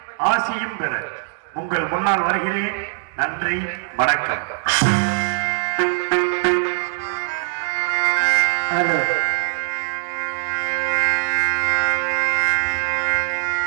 ஆசியும் பெற உங்கள் முன்னால் வருகிறேன். நன்றி, வணக்கம்.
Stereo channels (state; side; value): silent; left; digital silence